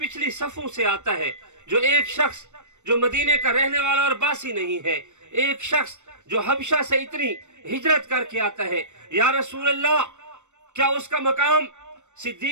صفوں سے آتا ہے، جو ایک شخص جو مدینے کا رہنے والا اور باسی نہیں ہے، ایک شخص جو حبشہ سے اتنی ہجرت کر کے آتا ہے، یا رسول اللہ کیا اس کا مقام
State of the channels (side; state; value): left; late; 0.84 ms